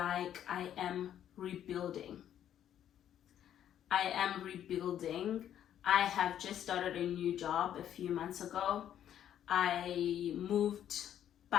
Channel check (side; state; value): right; quieter; 10.4 dB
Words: I am rebuilding. I have just started a new job a few months ago. I moved